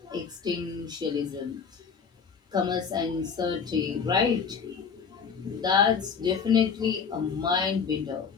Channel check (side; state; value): right; quieter; 6.1 dB